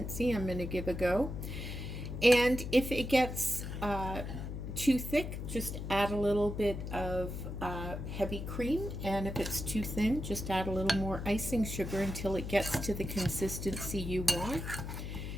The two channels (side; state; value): left; noise; hum, 6 dB below the sound